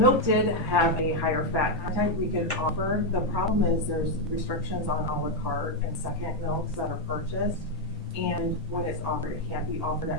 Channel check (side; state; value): both; normal; correlation 0.02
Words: did have a higher fat content we could offer. The problem is there's restrictions on a la carte and second milks that are purchased. And when it's offered, it can't be offered